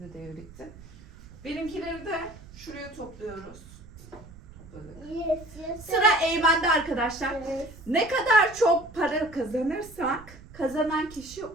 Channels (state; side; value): noise; right; rumble, 19 dB below the sound